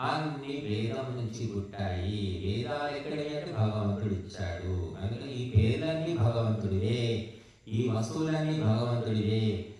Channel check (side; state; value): both; identical; correlation 1.00